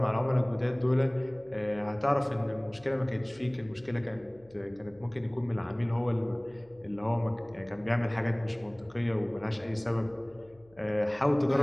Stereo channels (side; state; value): left; noise; hum, 28 dB below the sound